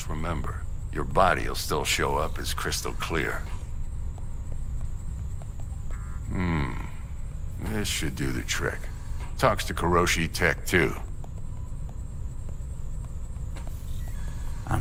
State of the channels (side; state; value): both; identical; correlation 1.00